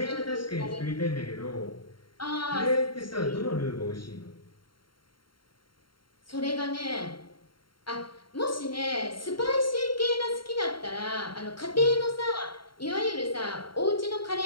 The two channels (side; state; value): right; late; 0.73 ms